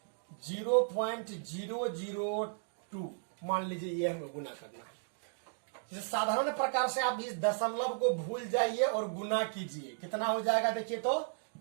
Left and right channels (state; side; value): silent; left; digital silence